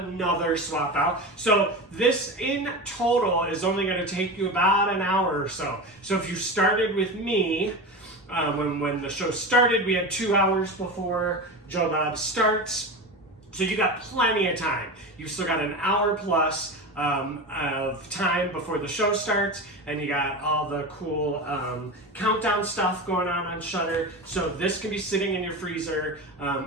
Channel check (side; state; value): both; normal; correlation 0.25